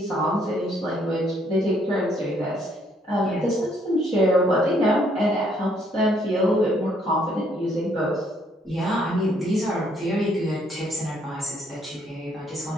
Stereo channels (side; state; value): both; normal; correlation 0.68